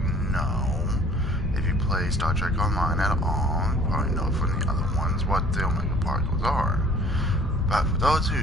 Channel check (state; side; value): normal; both; correlation 0.53